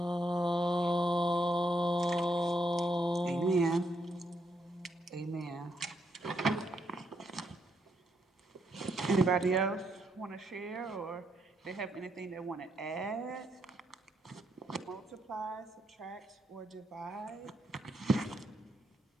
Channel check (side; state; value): both; normal; correlation 0.77